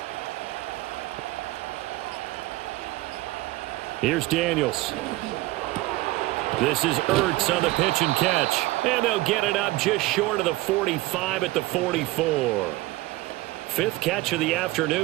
Here's Daniels. This is Ertz on the pitch and catch. And they'll get it up just short of the 45 at the 44. 5th catch of the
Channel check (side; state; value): left; quieter; 19.1 dB